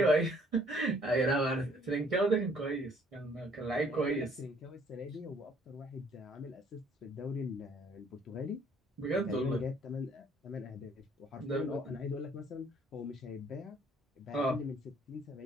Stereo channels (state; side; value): normal; both; correlation 0.61